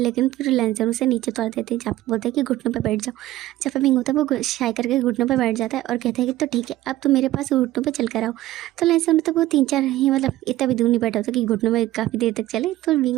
फिर लेंसर उसे नीचे उतार देते हैं। जहाँ पे बोलते हैं कि घुटनों पे बैठ जाओ। जहाँ पे विंग होता है वो शाय करके घुटनों पे बैठ जाता है और कहता है कि तो ठीक है अब तो मेरे पास घुटनों पे चल कर आओ। तो लेंसर होता है वो 3-4 ही मतलब इतना भी दूर नहीं बैठा होता कि घुटनों में काफ़ी देर तक चले। तो विंग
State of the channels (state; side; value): quieter; left; 15.6 dB